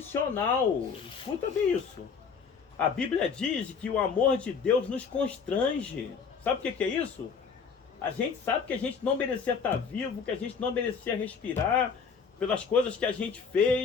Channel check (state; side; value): quieter; right; 5.9 dB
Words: Escuta bem isso. A Bíblia diz que o amor de Deus nos constrange. Sabe o que é isso? A gente sabe que a gente não merecia estar vivo, que a gente não merecia respirar pelas coisas que a gente